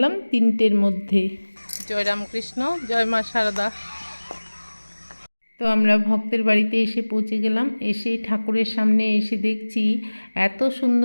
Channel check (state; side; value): inverted; both; correlation -1.00